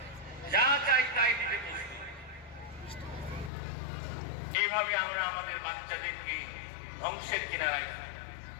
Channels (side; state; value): right; drops out; at 3.5 s